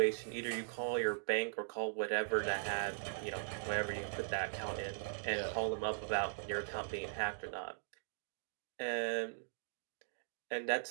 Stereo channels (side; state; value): left; silent; digital silence